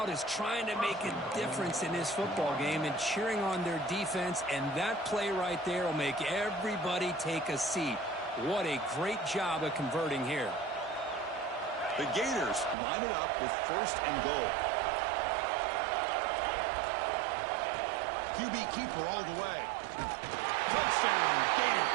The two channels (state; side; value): drops out; left; at 12.8 s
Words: is trying to make a difference in this football game and cheering on their defense, and that play right there will make everybody take a seat. What a great job of converting here. The Gators line it up with 1st and goal. QB keeper all the way. Touchdown,